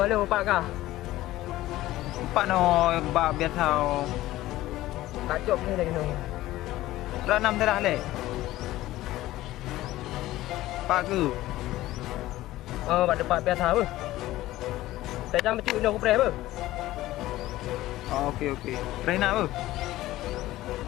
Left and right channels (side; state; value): right; quieter; 16.1 dB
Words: liệu bạn cả bạn nó bà biết sao đã trộm như này rồi ra năm thế đã lệ bà cứ bạn được bạn biết sao bơ tại sao mà chịu đâu có bè bơ ok đây nào bơ